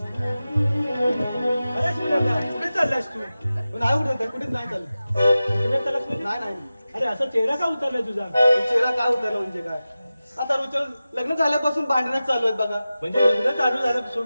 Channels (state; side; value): inverted; both; correlation -0.95